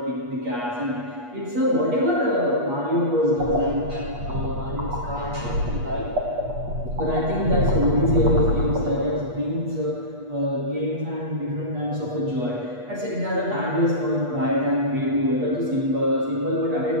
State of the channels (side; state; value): left; late; 8.3 ms